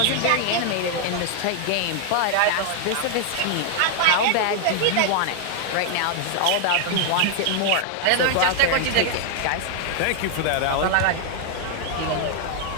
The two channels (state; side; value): different; both; correlation 0.00